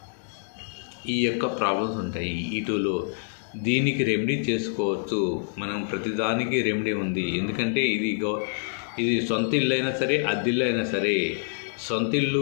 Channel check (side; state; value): right; silent; digital silence